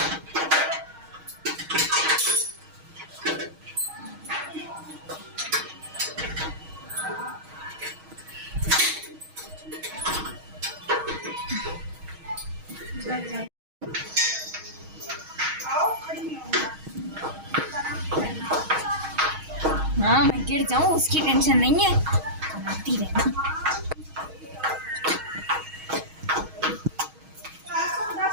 आओ, खड़ी नहीं होगा। हाँ, मैं गिर जाऊं उसकी टेंशन नहीं है। बनाती रहना। तासू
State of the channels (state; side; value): late; left; 6.3 ms